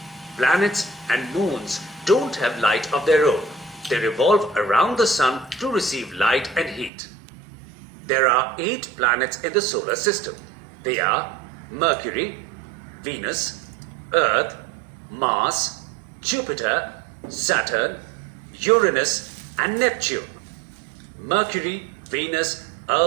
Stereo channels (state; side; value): drops out; left; at 6.9 s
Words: Planets and moons don't have light of their own. They revolve around the sun to receive light and heat. There are 8 planets in the solar system. They are Mercury, Venus, Earth, Mars, Jupiter, Saturn, Uranus, and Neptune. Mercury, Venus,